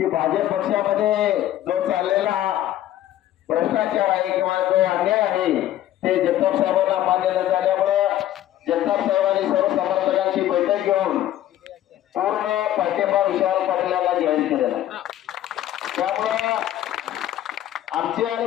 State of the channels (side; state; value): right; quieter; 12.8 dB